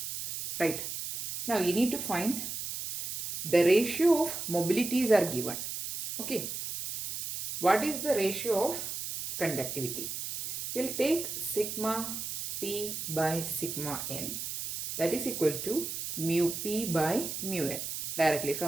Right. Now you need to find the ratio of mobilities are given. Okay. What is the ratio of conductivity? We'll take sigma P by sigma N, that is equal to mu P by mu N. Directly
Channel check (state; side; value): noise; right; hiss, 5 dB below the sound